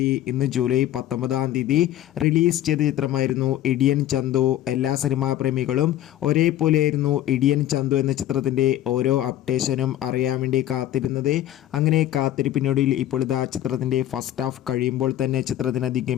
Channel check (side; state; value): right; quieter; 12.7 dB